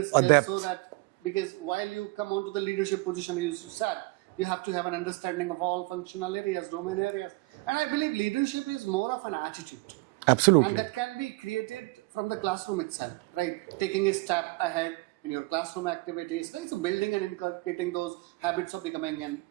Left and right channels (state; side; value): quieter; left; 23.7 dB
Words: skills so that, because while you come onto the leadership position, as you said, you have to have an understanding of all functional areas, domain areas. And I believe leadership is more of an attitude. Absolutely. And that can be created from the classroom itself, right? Taking a step ahead in your classroom activities, right? So building and inculcating those habits of becoming